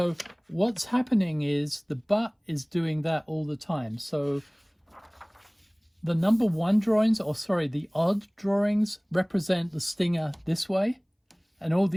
what's happening is the butt is doing that all the time. So the number 1 drawings, or sorry, the odd drawings represent the stinger this way, and all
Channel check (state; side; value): identical; both; correlation 1.00